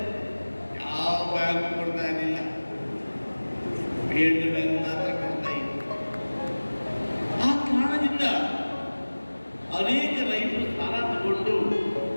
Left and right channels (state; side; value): inverted; both; correlation -1.00